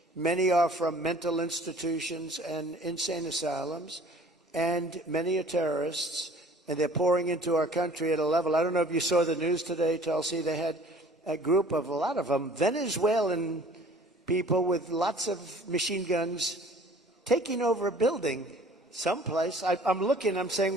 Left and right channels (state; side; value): normal; both; correlation 0.51